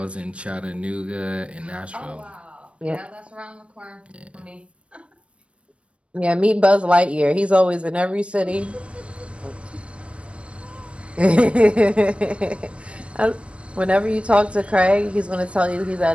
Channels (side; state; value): left; late; 0.061 ms